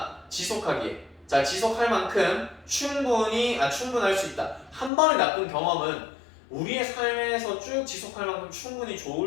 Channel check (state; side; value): drops out; right; at 4.9 s